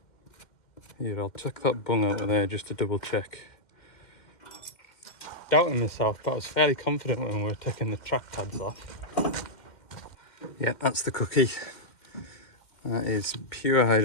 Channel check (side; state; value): right; late; 2.1 ms